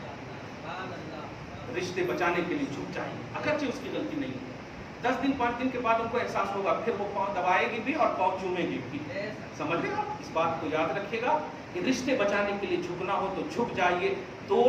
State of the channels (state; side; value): identical; both; correlation 1.00